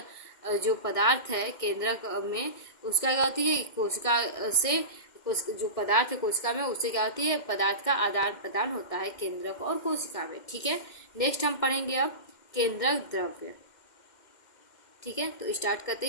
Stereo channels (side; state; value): right; late; 2.1 ms